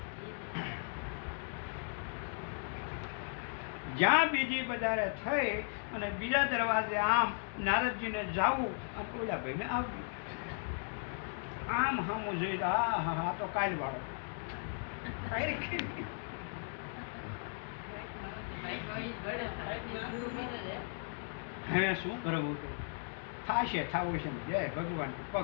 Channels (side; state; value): right; silent; 53 dB below the other